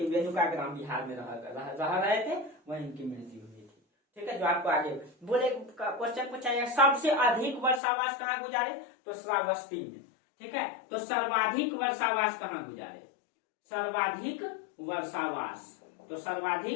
वेनुका ग्राम विहार में रह रहे थे, वहीं उनकी मृत्यु हुई थी। ठीक है, जो आपको आगे बोले क्वेश्चन पूछा जाए, सबसे अधिक वर्षावास कहाँ गुजारे, तो श्रावस्ती में। ठीक है, तो सर्वाधिक वर्षावास कहाँ गुजारे, सर्वाधिक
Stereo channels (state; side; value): drops out; right; at 7.8 s